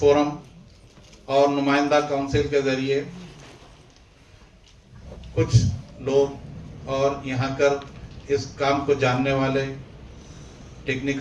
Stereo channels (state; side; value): identical; both; correlation 1.00